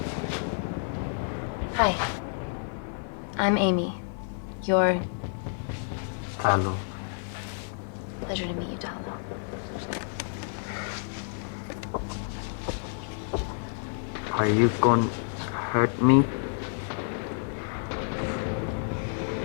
Hi. I'm Amy. You're... Hello. Pleasure to meet you, Talo. Are you gonna hurt me?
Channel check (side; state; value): right; silent; 58 dB below the other